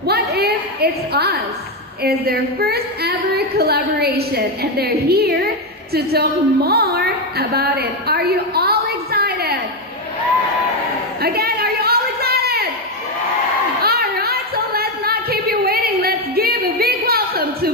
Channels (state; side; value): normal; both; correlation 0.07